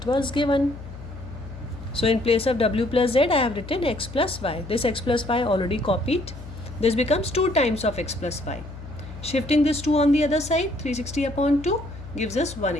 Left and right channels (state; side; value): noise; left; hum, 13 dB below the sound